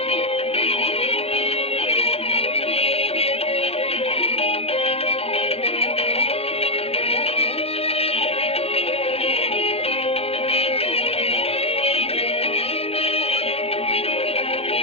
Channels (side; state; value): right; late; 0.29 ms